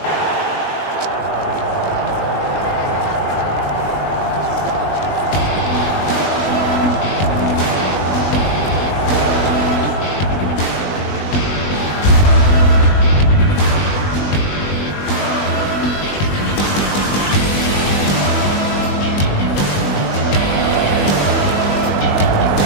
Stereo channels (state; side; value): late; right; 20 ms